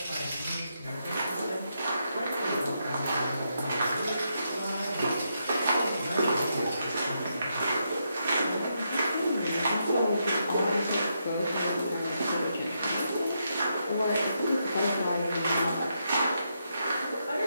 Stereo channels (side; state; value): both; inverted; correlation -0.81